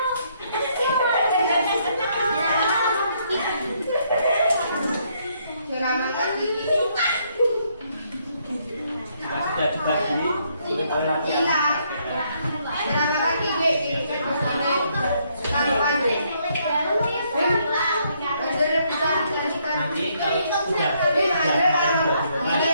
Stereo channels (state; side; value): inverted; both; correlation -0.71